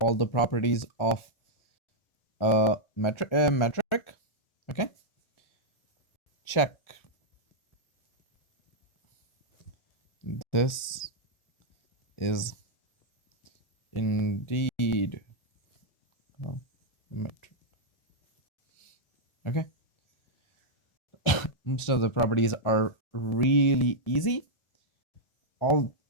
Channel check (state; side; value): late; right; 1.4 ms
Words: the properties of a metric. Okay? Check. This is indeed a metric. Okay? Most of the properties are really easy. All